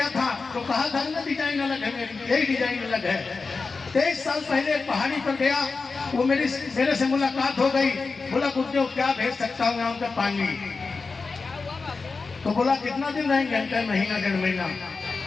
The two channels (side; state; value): right; quieter; 4.3 dB